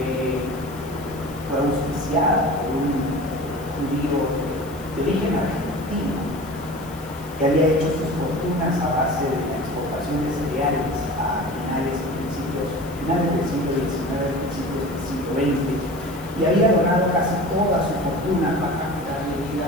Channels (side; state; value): left; noise; hiss, 21 dB below the sound